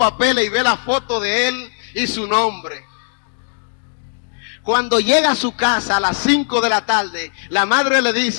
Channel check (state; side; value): silent; right; digital silence